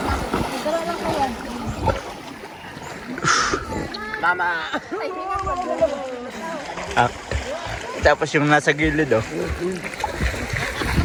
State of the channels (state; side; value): identical; both; correlation 1.00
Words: Mama! Tapos yung nasa gilid, oh.